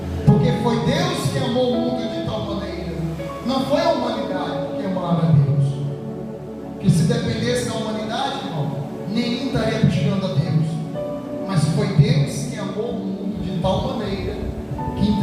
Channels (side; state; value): both; identical; correlation 1.00